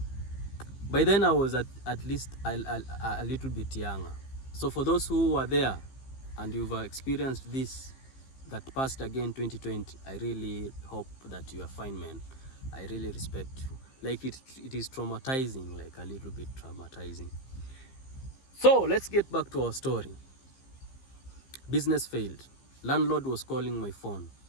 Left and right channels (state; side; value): late; right; 15 ms